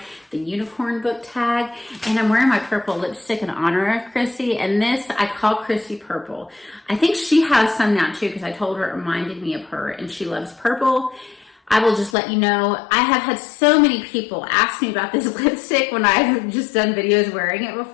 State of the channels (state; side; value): drops out; right; at 12.2 s